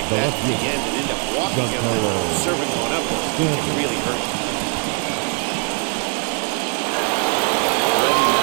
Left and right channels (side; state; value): left; quieter; 37.1 dB